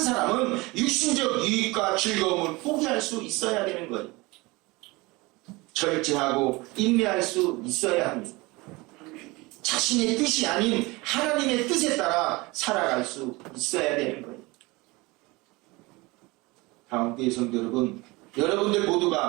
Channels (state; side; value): quieter; left; 23.4 dB